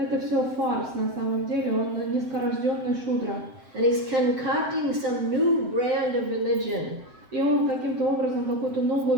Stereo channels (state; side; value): late; left; 7.7 ms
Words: все фарс на самом деле, он низкорожденный шудра. And he's concocting some new brand of religion. И он каким-то образом какую-то